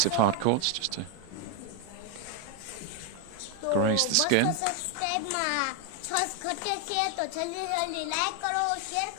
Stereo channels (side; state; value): both; different; correlation 0.01